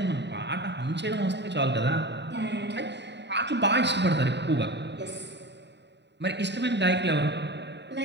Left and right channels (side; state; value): left; late; 0.51 ms